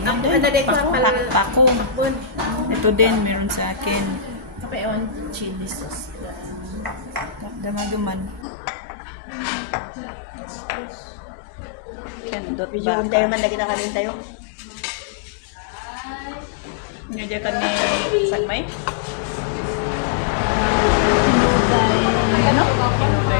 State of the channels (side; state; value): right; drops out; at 8.5 s